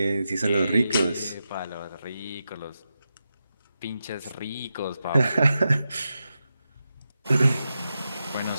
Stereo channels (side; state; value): both; inverted; correlation -0.89